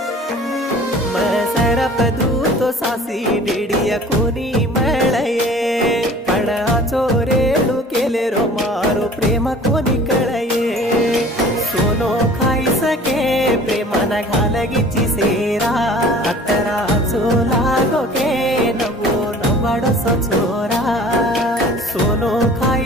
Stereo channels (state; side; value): normal; both; correlation 0.47